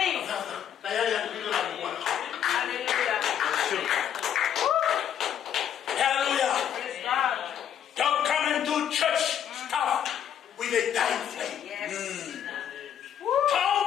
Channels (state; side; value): quieter; right; 9.5 dB